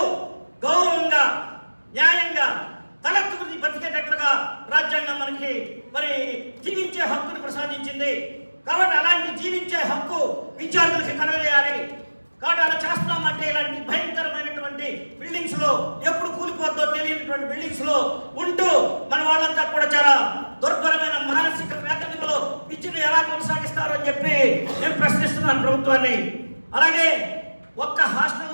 గౌరవంగా న్యాయంగా తలెత్తుకుని బతికేటట్లుగా రాజ్యాంగం మనకి జీవించే హక్కును ప్రసాదించింది. కాబట్టి అలాంటి జీవించే హక్కు విద్యార్థులకి కలగజేయాలి. కాబట్టి అలా చేస్తున్నామంటే ఇలాంటి భయంకరమైనటువంటి బిల్డింగ్స్ లో ఎప్పుడు కూలిపోద్దో తెలియనటువంటి బిల్డింగ్స్ లో ఉంటూ మన వాళ్ళంతా కూడా చాలా దుర్భరమైన మానసిక వేదనలో విద్యను ఎలా కొనసాగిస్తారో అని చెప్పి నేను ప్రశ్నిస్తున్నాను ప్రభుత్వాన్ని. అలాగే ఒక్క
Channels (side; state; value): both; inverted; correlation -1.00